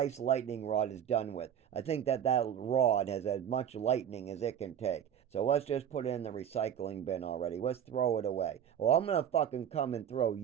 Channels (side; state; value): left; quieter; 9.3 dB